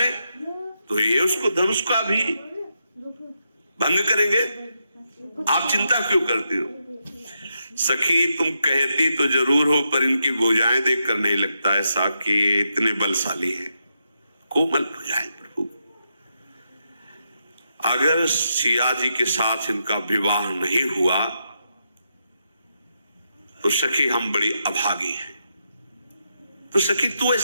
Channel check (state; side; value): inverted; both; correlation -0.83